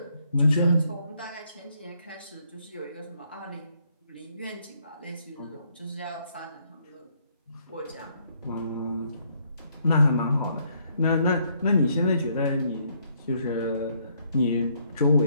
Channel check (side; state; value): both; inverted; correlation -0.70